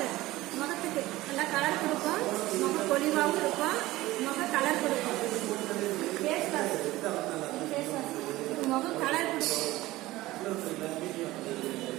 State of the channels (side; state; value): left; quieter; 17.9 dB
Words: முகத்துக்கு நல்லா கலர் கொடுக்கும். முக பொலிவாகவும் இருக்கும். முக கலர் கொடுக்கும். ஃபேஸ் வாஷ் முகம் கலர் கொடுக்கும்.